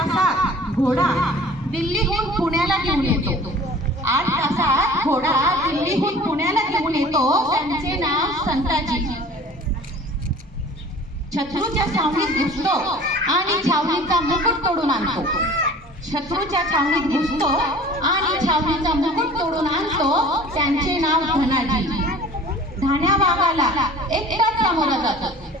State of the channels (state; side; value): normal; both; correlation 0.45